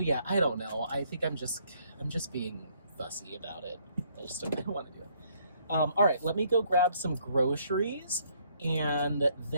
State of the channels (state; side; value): inverted; both; correlation -0.67